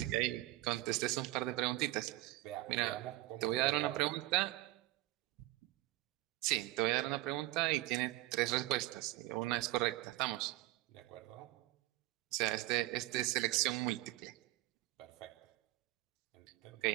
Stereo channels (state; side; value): quieter; left; 18.0 dB